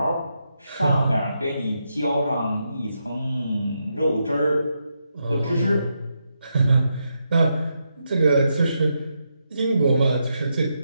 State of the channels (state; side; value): inverted; both; correlation -0.83